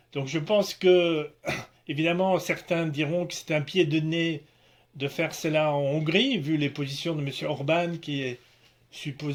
Donc je pense que, évidemment, certains diront que c'est un pied de nez de faire cela en Hongrie, vu les positions de M. Orban, qui est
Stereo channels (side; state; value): both; identical; correlation 1.00